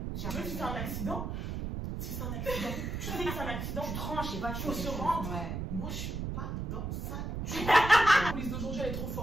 Même si c'est un accident, tu sais que c'est un accident, Tu tranches, je sais pas, tu faut fais se quelque chose. rendre. Ouais. Moi, je suis pas dans ça. La police d'aujourd'hui, elle est trop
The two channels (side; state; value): right; noise; rumble, 4 dB below the sound